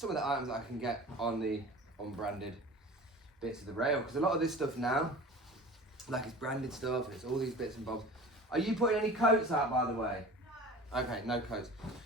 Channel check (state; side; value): normal; both; correlation 0.38